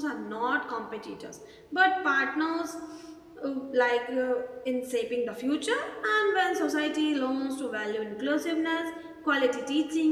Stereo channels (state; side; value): identical; both; correlation 1.00